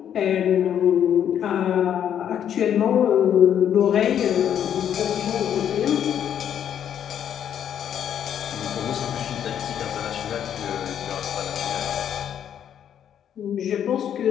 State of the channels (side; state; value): right; quieter; 9.4 dB